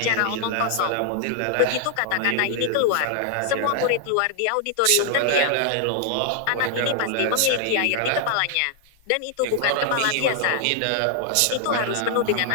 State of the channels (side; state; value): both; different; correlation 0.00